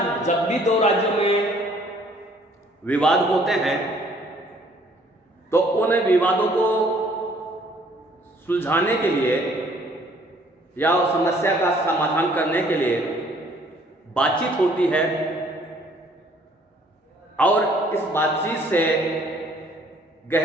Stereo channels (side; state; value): both; normal; correlation 0.60